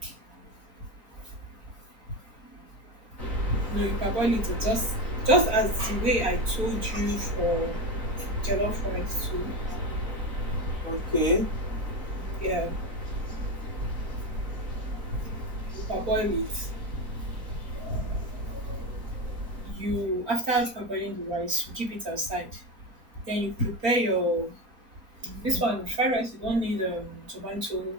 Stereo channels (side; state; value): left; late; 4.4 ms